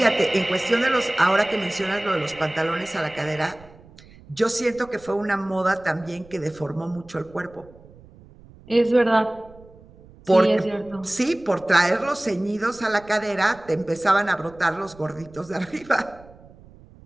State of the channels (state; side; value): noise; right; rumble, 23 dB below the sound